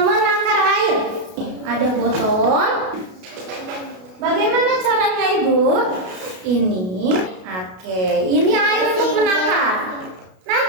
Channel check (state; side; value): late; left; 33 ms